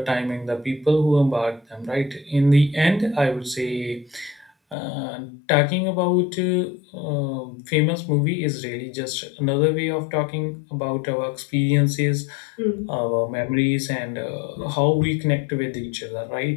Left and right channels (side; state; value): right; drops out; at 4.8 s